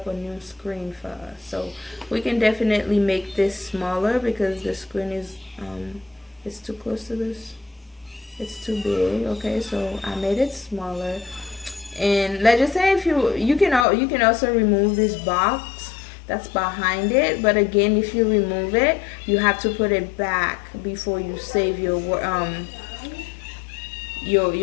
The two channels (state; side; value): drops out; right; at 13.9 s